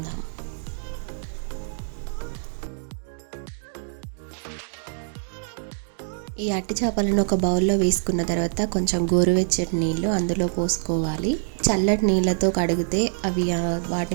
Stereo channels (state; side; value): silent; left; digital silence